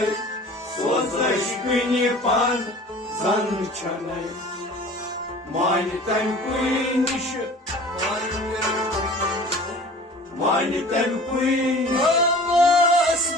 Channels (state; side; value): normal; both; correlation 0.44